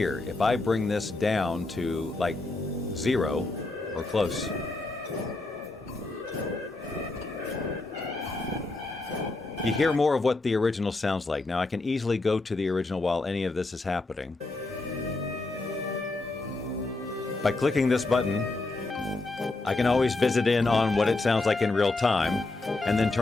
If I bring this down to like 0 or close, you hear more of what the original sounds like. Now I can easily go to the original while any of this is happening. By clicking this button, I can always visit in on what it sounds like in real time and then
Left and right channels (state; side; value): quieter; right; 3.1 dB